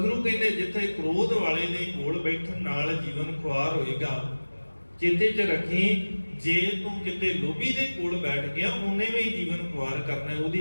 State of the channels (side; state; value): both; inverted; correlation -1.00